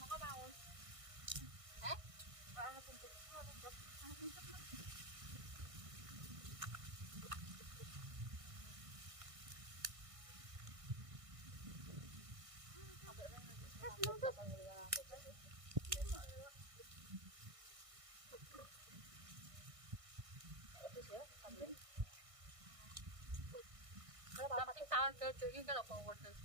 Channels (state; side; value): late; left; 1.6 ms